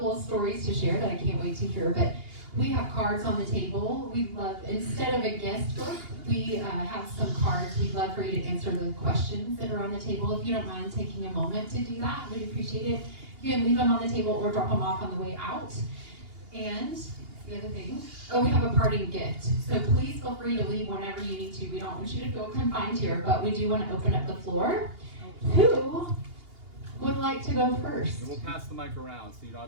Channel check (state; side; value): late; left; 2.8 ms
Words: of stories to share that I can't wait to hear, but we have cards on the table. We'd love, instead of a guest book, we have some cards. We'd love for you to answer the questions that are on the table. If you don't mind taking a moment to do that, we'd appreciate it. You can leave them on the table or drop them off on the way out. And the other thing, we have a parting gift. So please feel free to leave whenever you need to. We don't want you to feel confined here, but we do want to open up the floor. Who would like to go first? And we'll pass the mic around, so you don't